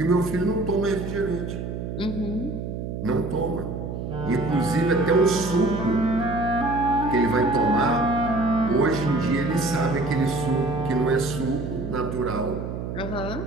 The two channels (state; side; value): noise; right; hum, 6 dB below the sound